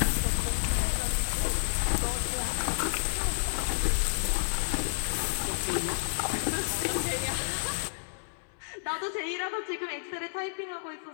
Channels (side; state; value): right; silent; 58 dB below the other